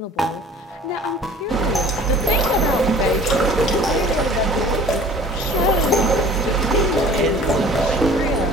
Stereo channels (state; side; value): normal; both; correlation 0.48